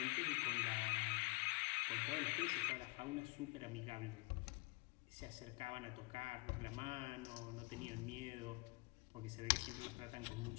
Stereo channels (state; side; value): quieter; right; 28.3 dB